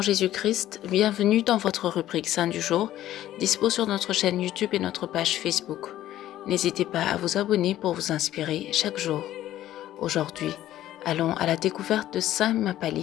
Jésus-Christ, bienvenue dans votre rubrique Saint du jour, dispo sur notre chaîne YouTube et notre page Facebook. N'hésitez pas à vous abonner pour vous inspirer chaque jour. Aujourd'hui, allons à la découverte de Saint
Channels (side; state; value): right; quieter; 13.3 dB